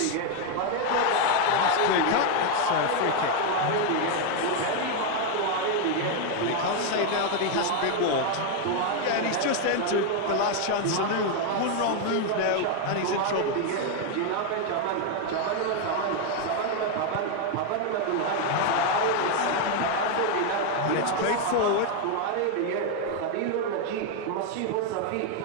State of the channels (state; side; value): different; both; correlation 0.01